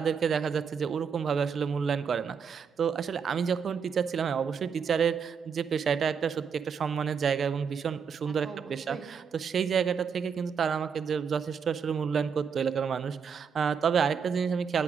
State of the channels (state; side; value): quieter; left; 6.5 dB